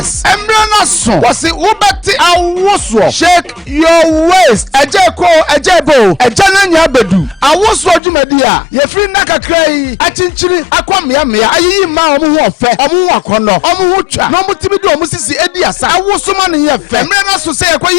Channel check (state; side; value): drops out; right; at 8.0 s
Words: emrana so was it ubati awoswo shake your waist ejeko ejebo ejananya bedu awoswo dwumadi a ye free nakakrai achinchiri akwamia mia ayiyi ma omu ho ofe omu ho akono omu ho twa no mutimi de omu sisi edi asa awosoma ne ye fe emrana so say